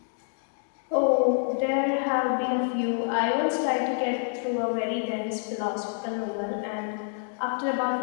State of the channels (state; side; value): silent; right; digital silence